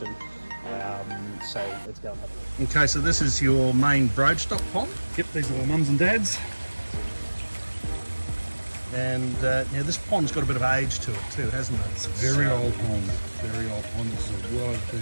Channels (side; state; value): both; inverted; correlation -1.00